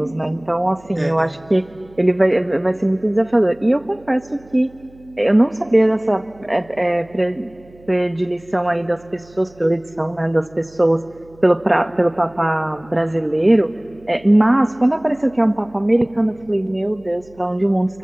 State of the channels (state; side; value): noise; right; hum, 26 dB below the sound